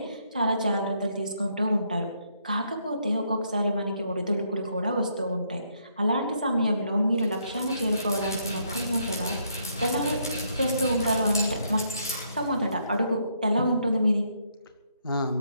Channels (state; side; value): inverted; both; correlation -0.73